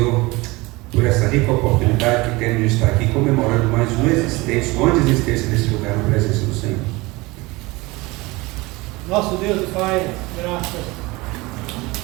por essa rica oportunidade que temos de estar aqui comemorando mais uma existência, uma existência nesse lugar, na presença do Senhor. Nosso Deus e Pai, graças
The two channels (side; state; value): left; quieter; 22.7 dB